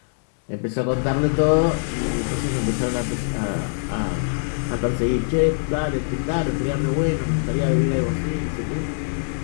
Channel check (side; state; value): right; silent; digital silence